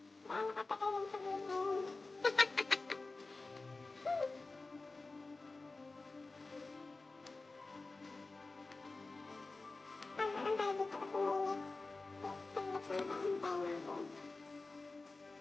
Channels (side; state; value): right; quieter; 3.5 dB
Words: gaano katagal yung sabihin na yun? Antay dito kasi mainit. Saglit lang, antay na ako.